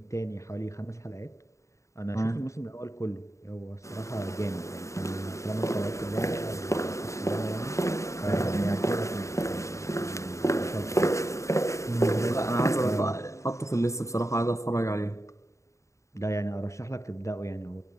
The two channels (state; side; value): late; right; 0.15 ms